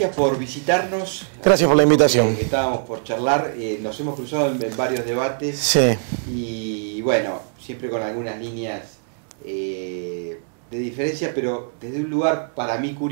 por visitarnos. Gracias por la invitación. Estábamos por charlar, nos hemos cruzado en varios debates. Sí. Y bueno, siempre con algunas líneas de diferencia, pero desde un lugar para mí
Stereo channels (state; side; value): silent; left; 64 dB below the other